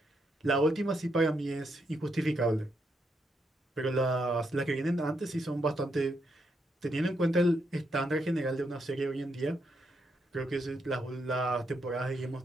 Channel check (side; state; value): both; normal; correlation 0.79